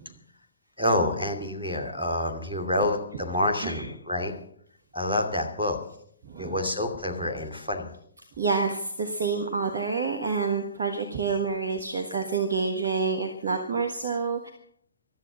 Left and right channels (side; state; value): both; inverted; correlation -0.46